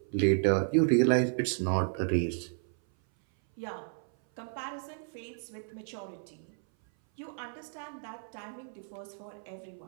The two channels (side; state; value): left; silent; 56 dB below the other